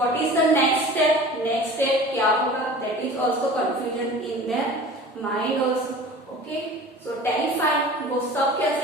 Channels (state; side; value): normal; both; correlation 0.40